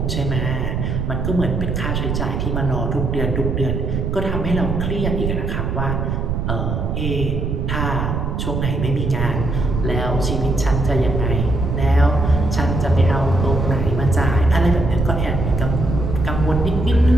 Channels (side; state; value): right; noise; rumble, 1 dB below the sound